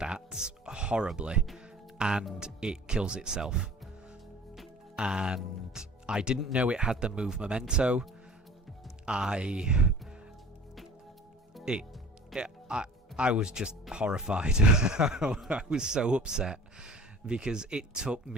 horribly, and it kills itself. And I didn't know it had the move Memento. I was just horrified. I was so upset because it took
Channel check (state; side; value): normal; both; correlation 0.45